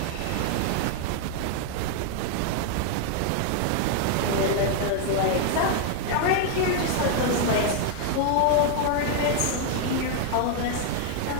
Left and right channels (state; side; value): different; both; correlation 0.00